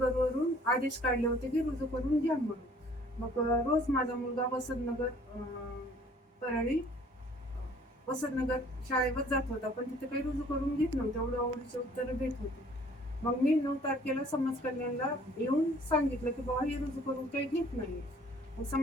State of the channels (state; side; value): normal; both; correlation 0.56